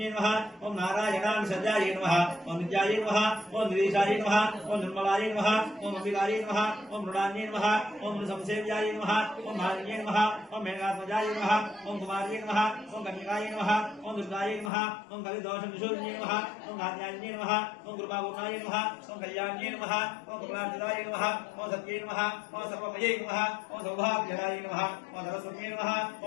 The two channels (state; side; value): drops out; right; at 14.7 s